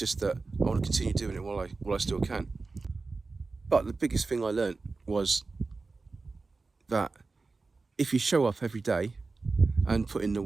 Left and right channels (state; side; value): quieter; left; 3.9 dB